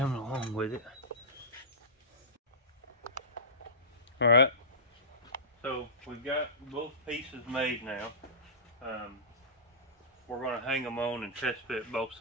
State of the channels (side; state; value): both; normal; correlation -0.19